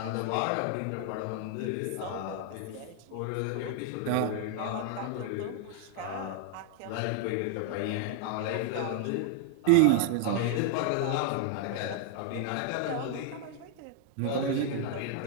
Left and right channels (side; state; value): both; different; correlation 0.00